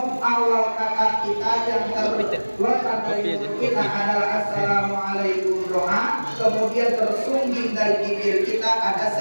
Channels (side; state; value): both; inverted; correlation -1.00